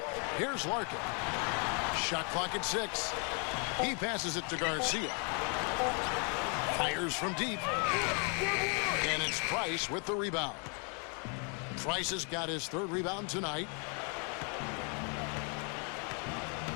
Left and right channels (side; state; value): right; quieter; 37.7 dB